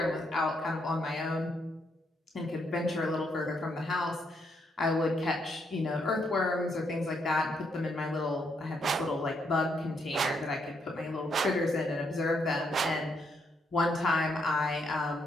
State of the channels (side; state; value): both; normal; correlation 0.76